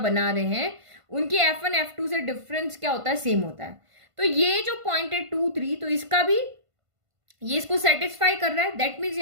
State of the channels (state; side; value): late; left; 1.5 ms